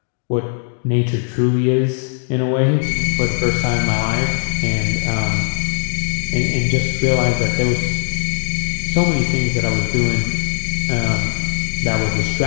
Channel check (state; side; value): silent; right; digital silence